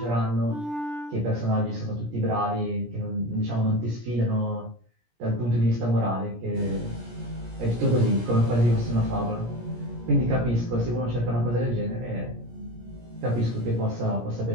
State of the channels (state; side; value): late; left; 17 ms